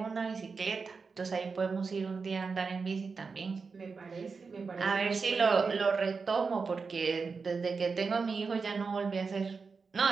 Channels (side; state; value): left; quieter; 4.9 dB